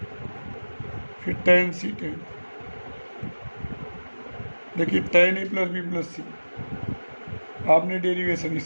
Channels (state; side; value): inverted; both; correlation -1.00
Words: फिर टेन सी टेन। देखिए ten A plus B plus सी, आपने डेरिवेशन